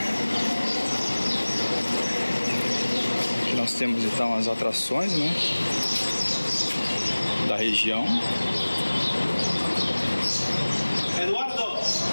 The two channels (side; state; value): both; inverted; correlation -1.00